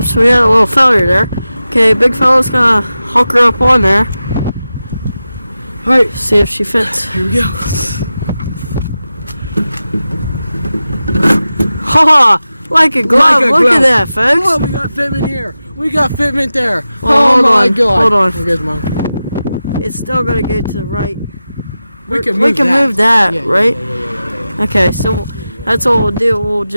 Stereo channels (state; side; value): inverted; both; correlation -0.94